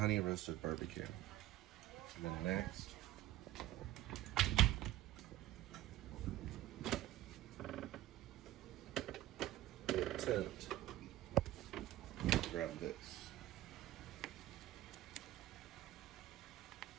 roasted barbecue. And then next, a tent. Grab this.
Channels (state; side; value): quieter; left; 14.5 dB